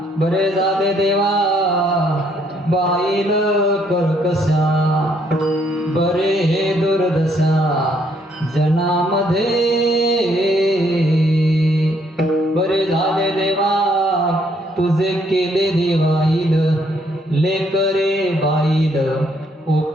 बरे झाले देवा, बाईल कर्कशा, बरे हे दुर्दशा जनामध्ये. बरे झाले देवा, तुझे केले देवाईल, लेकरे बाईल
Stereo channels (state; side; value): normal; both; correlation 0.69